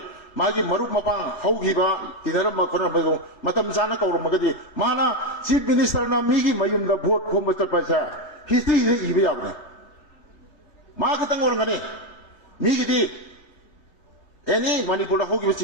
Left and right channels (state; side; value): late; right; 3.4 ms